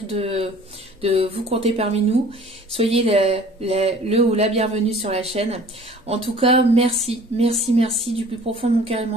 de vous compter parmi nous. Soyez le ou la bienvenue sur la chaîne. En tout cas, merci, merci, merci du plus profond de mon cœur et de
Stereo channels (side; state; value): both; normal; correlation 0.49